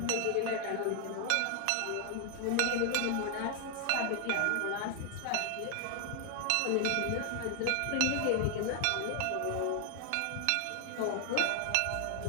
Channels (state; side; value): different; both; correlation 0.00